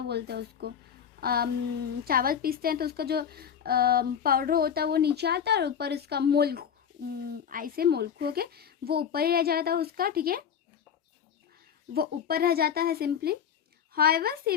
हैं उसको, चावल पीसते हैं तो उसका जो पाउडर होता है वो नीचे आता है, और ऊपर इसका मोल्क, ऐसे मोल्क हो के वो ऊपर ही रह जाता है उसका, ठीक है, वो ऊपर रह जाता है simply. However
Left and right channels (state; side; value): quieter; right; 8.0 dB